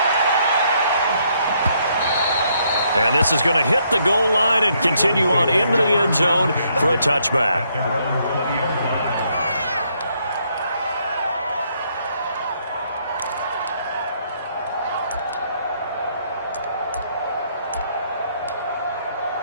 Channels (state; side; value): inverted; both; correlation -0.72